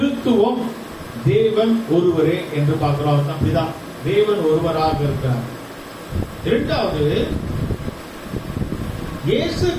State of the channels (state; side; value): identical; both; correlation 1.00